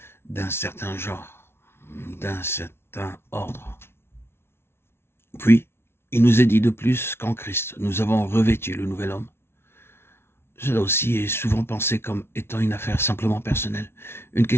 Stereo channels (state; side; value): late; right; 0.12 ms